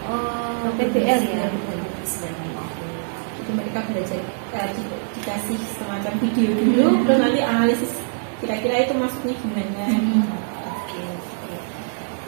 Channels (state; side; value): silent; left; digital silence